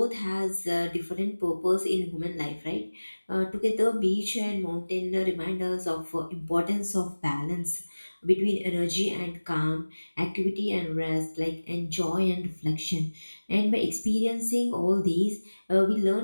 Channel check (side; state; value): both; inverted; correlation -1.00